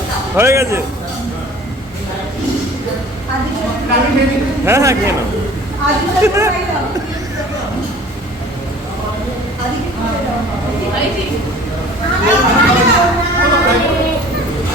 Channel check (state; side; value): normal; both; correlation 0.47